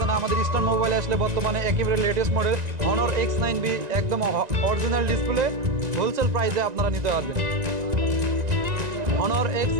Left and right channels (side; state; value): left; late; 1.9 ms